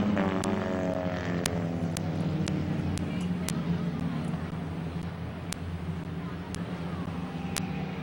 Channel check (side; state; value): both; identical; correlation 1.00